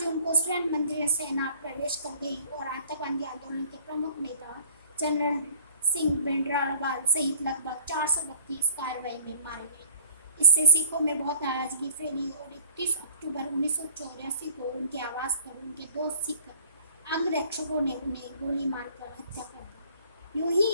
जून को स्वर्ण मंदिर में सेना प्रवेश कर गई और आतंकवादी आंदोलन के प्रमुख नेता जनरल सिंह भिंडरावाल सहित लगभग 400 व्यक्ति इस कार्रवाई में मारे गए। इससे सिखों में बहुत नाराजगी फैली और 31 अक्टूबर 1984 को उनके आवास पर उनके 2 सिख अंगरक्षकों ने उन्हें गोली मारकर हत्या कर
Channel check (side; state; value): both; inverted; correlation -0.50